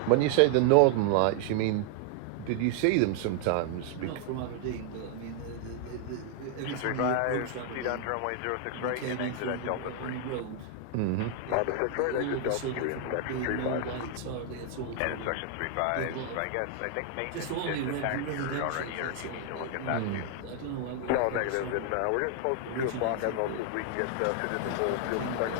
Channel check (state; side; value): different; both; correlation 0.00